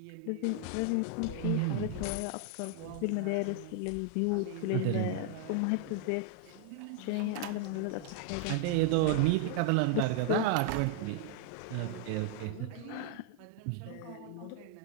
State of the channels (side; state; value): both; different; correlation 0.00